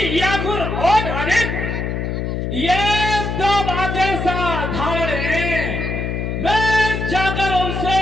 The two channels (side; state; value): left; noise; hum, 2 dB below the sound